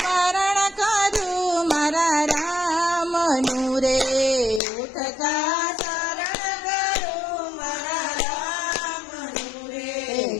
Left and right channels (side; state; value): right; drops out; at 4.6 s